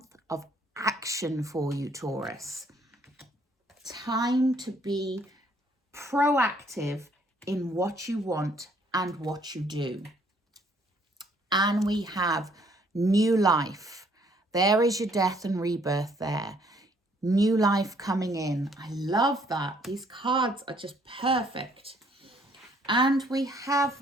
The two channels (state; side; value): normal; both; correlation 0.64